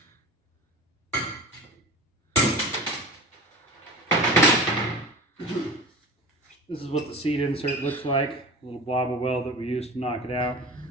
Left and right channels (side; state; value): both; normal; correlation 0.35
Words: This is what the seat insert looks like, a little blob of weld that we used to knock it out.